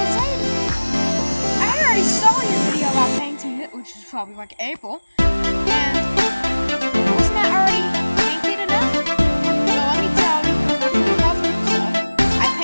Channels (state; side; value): inverted; both; correlation -1.00